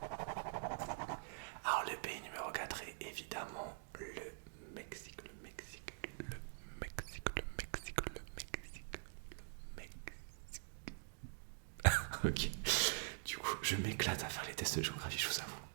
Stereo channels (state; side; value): silent; left; digital silence